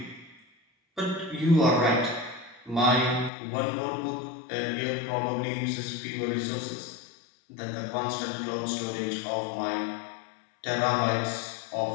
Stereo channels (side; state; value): right; drops out; at 3.3 s